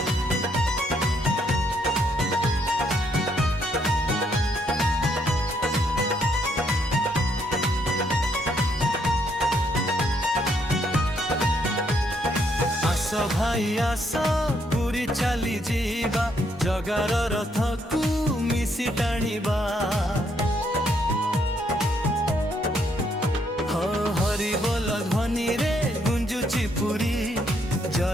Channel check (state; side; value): normal; both; correlation 0.72